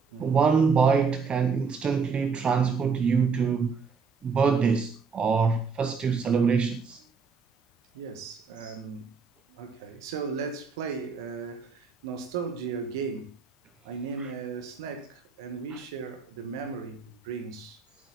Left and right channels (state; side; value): quieter; left; 5.4 dB